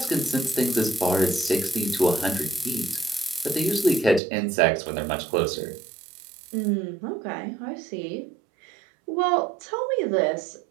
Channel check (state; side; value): drops out; left; at 4.2 s